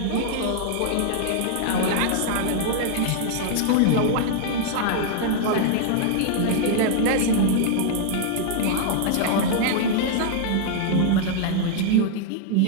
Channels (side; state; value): both; different; correlation -0.01